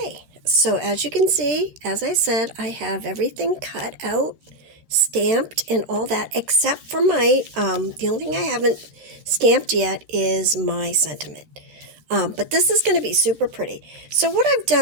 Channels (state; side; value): late; left; 13 ms